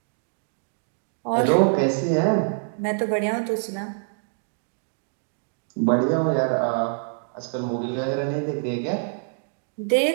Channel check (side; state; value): left; silent; digital silence